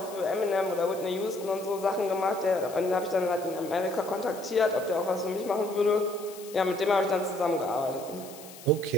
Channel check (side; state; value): left; noise; hiss, 18 dB below the sound